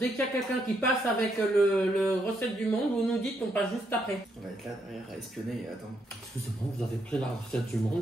qu'il y a quelqu'un qui passe avec le recette du monde, vous nous dites qu'on passe juste après. On va être là derrière à espionner et attendre. Excusez-moi, vous avez pris la recette du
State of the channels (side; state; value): both; normal; correlation 0.76